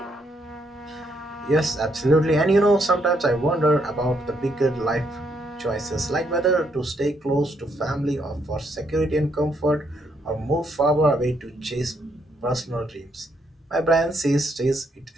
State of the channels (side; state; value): both; normal; correlation 0.74